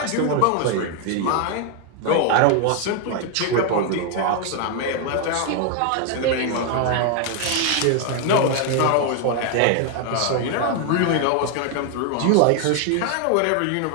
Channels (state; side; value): different; both; correlation 0.01